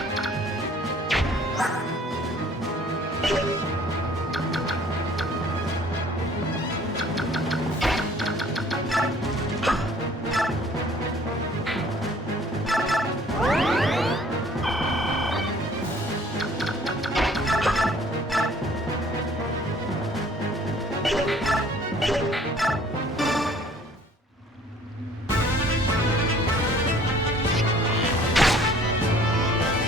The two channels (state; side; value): normal; both; correlation 0.55